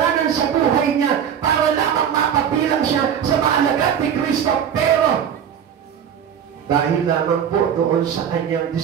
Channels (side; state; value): left; quieter; 8.5 dB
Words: sa buhay niya para lamang mapabilang siya sa maalagad ni Kristo. Pero, dahil lamang po doon sa kanyang